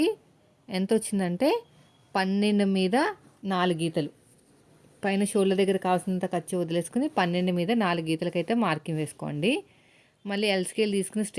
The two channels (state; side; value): identical; both; correlation 1.00